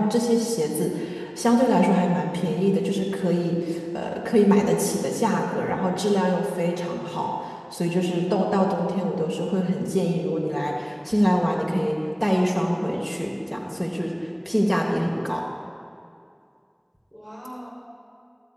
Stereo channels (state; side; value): identical; both; correlation 1.00